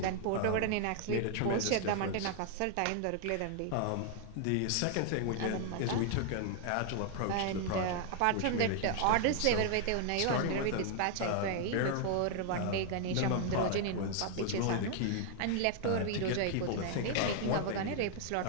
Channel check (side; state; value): both; different; correlation 0.00